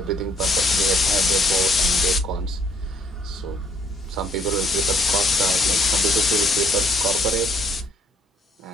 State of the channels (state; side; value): normal; both; correlation 0.63